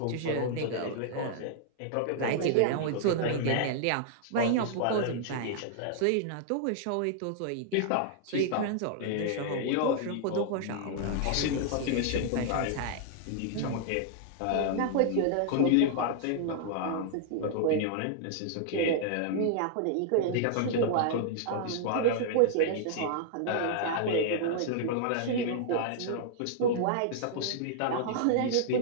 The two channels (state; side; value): different; both; correlation -0.01